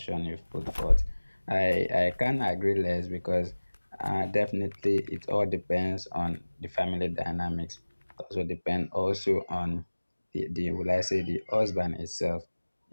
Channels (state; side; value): inverted; both; correlation -1.00